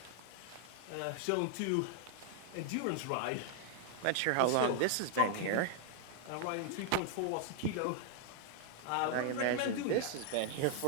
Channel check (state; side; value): different; both; correlation 0.00